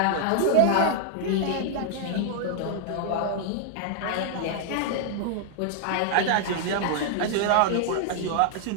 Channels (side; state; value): both; different; correlation -0.01